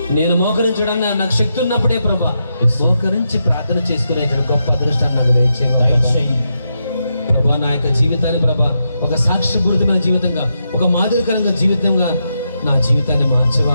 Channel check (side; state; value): both; inverted; correlation -0.84